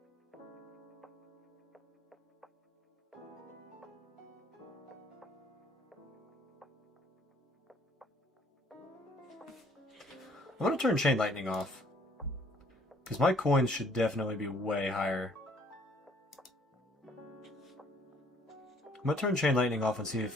I'm going to turn Chain Lightning off, because my coins should definitely be way higher. I'm going to turn Chain Lightning off and see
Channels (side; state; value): both; normal; correlation 0.60